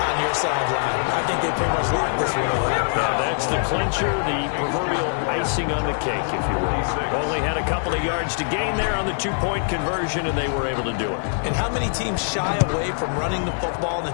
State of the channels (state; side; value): silent; right; 63 dB below the other